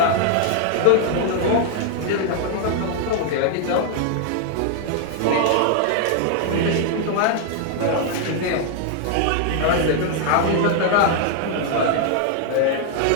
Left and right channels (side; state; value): both; different; correlation 0.00